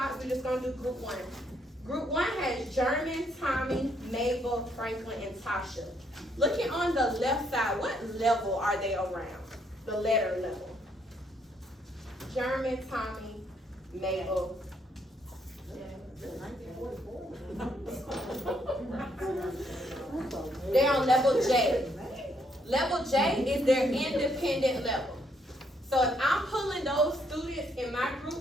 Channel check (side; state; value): both; normal; correlation 0.72